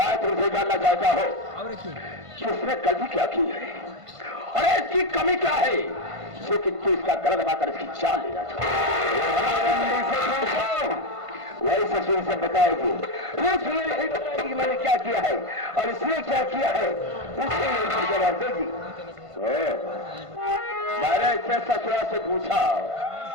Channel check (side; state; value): left; late; 1.5 ms